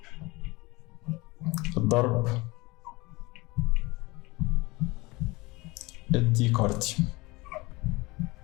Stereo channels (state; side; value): quieter; right; 22.9 dB